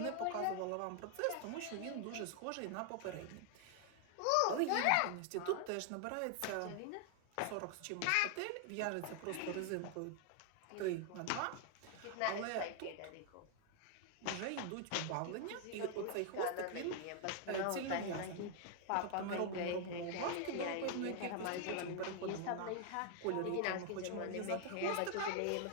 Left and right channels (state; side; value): different; both; correlation 0.00